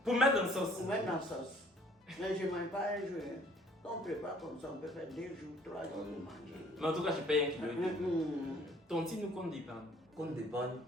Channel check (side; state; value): both; normal; correlation 0.57